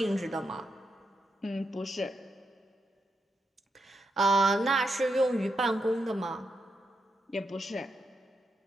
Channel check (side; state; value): both; normal; correlation 0.83